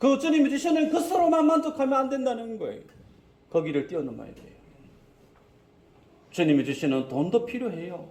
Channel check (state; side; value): identical; both; correlation 1.00